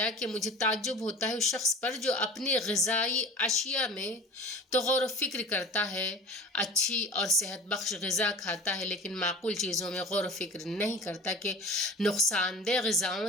کہ مجھے تعجب ہوتا ہے اس شخص پر جو اپنی غذائی اشیاء میں تو غور و فکر کرتا ہے، اچھی اور صحت بخش غذا کھاتا ہے، لیکن معقول چیزوں میں غور و فکر نہیں کرتا کہ نقصان دہ غذاؤں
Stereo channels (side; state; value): both; normal; correlation 0.38